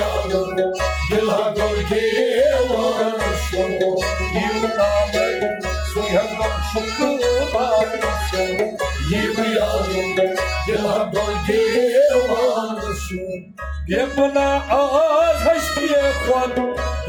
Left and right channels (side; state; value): both; identical; correlation 1.00